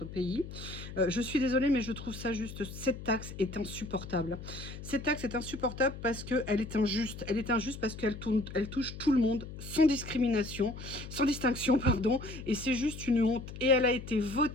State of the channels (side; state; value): left; noise; hum, 11 dB below the sound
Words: pays. Je suis désolée, mais je trouve ça juste. Cette taxe est insupportable. Cette taxe est insupportable parce qu'elle est injuste. Elle est injuste parce elle touche tout le monde sans discrimination, sans distinction, pardon. Et c'est juste une honte. Et elle a été